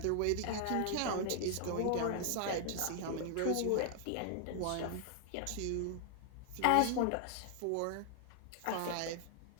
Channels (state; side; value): different; both; correlation 0.00